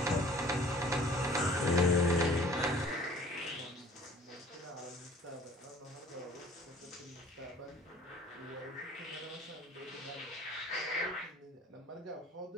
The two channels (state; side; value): normal; both; correlation 0.50